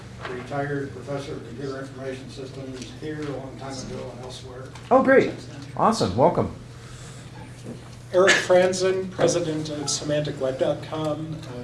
retired professor of computer information systems here a long time ago and elsewhere. Oh, great. Awesome. Welcome. Eric Franzen, president of SemanticWeb.com.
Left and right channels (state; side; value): identical; both; correlation 1.00